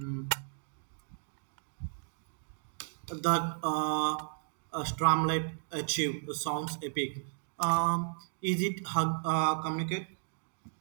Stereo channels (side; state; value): left; silent; digital silence